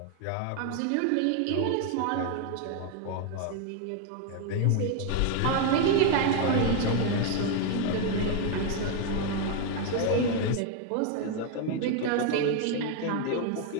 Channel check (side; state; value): both; different; correlation 0.01